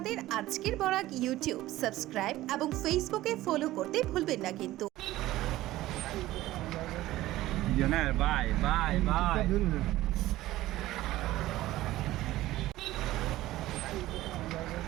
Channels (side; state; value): left; quieter; 16.1 dB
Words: আজকের বরাক ইউটিউব সাবস্ক্রাইব এবং ফেসবুকে ফলো করতে ভুলবেন না কিন্তু। Bye bye bye